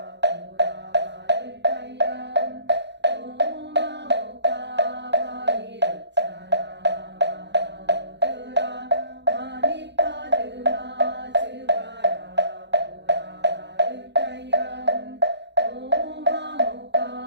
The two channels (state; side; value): late; left; 0.51 ms